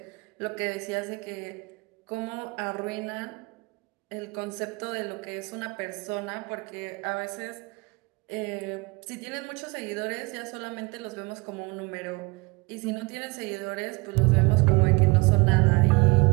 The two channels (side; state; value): left; quieter; 26.4 dB